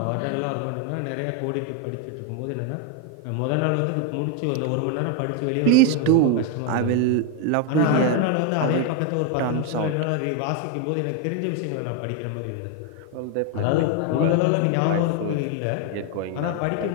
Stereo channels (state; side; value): different; both; correlation 0.01